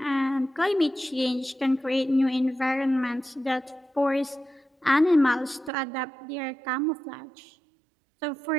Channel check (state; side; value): drops out; left; at 5.7 s